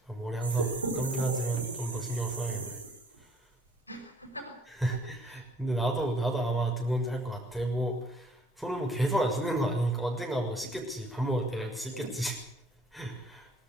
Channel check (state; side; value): normal; both; correlation 0.60